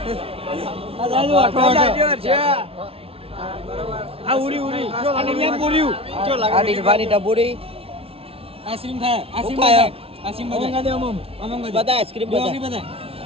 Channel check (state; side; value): late; left; 0.27 ms